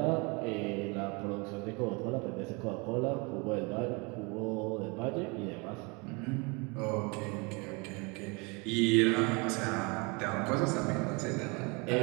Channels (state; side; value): quieter; left; 29.4 dB